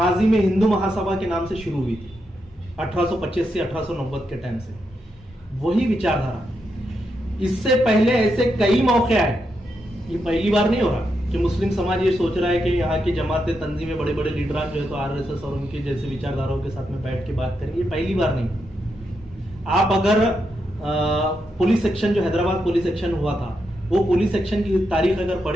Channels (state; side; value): normal; both; correlation 0.83